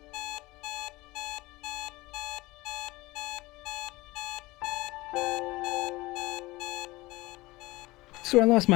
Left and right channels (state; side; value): quieter; right; 20.5 dB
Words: So I lost